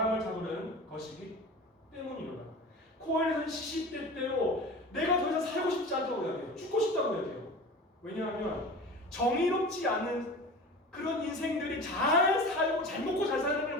잡으려는 것이기 때문이로다. 코엘렛은 시시때때로 내가 더 이상 살고 싶지 않다고 이야기해요. 죽고 싶다고 이야기해요. 왜냐하면 정의롭지 않은 그런 인생들이 잘 살고 잘 먹고 잘 사는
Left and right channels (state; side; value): normal; both; correlation 0.35